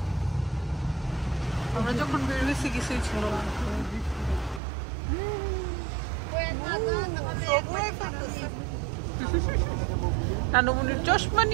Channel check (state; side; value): drops out; left; at 4.6 s